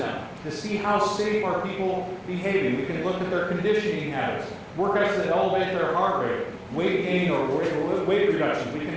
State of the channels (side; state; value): both; identical; correlation 1.00